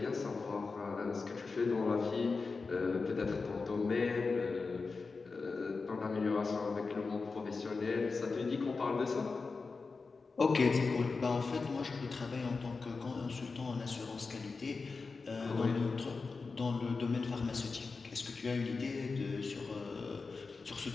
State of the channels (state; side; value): quieter; right; 4.3 dB